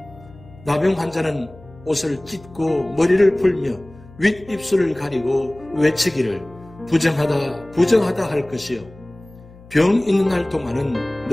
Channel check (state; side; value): noise; left; hum, 22 dB below the sound